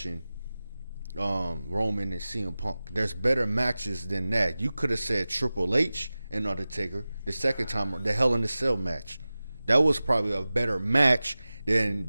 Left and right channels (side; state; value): both; inverted; correlation -0.97